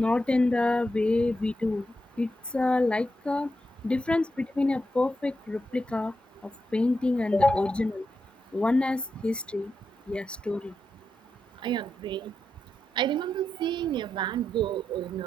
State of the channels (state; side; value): normal; both; correlation 0.86